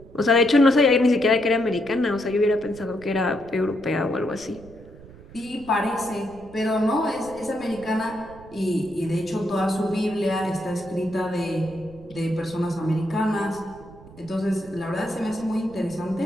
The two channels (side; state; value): right; noise; rumble, 20 dB below the sound